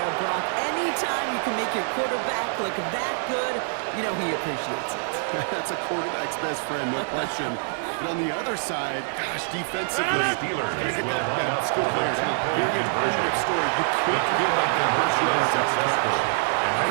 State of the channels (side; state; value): left; silent; 61 dB below the other